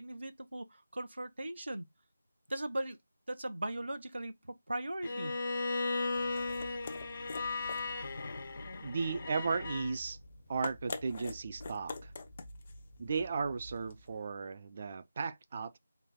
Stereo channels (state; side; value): inverted; both; correlation -0.87